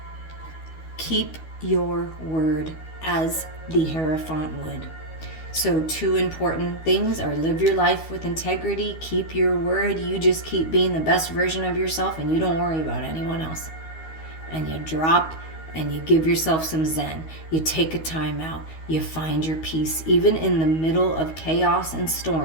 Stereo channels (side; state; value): right; late; 12 ms